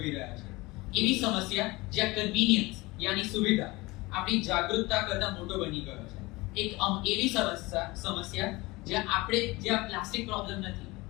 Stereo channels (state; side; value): quieter; right; 22.3 dB